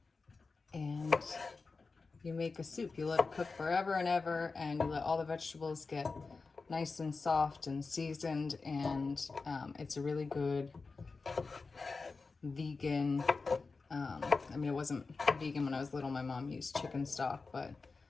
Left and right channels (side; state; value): right; quieter; 4.2 dB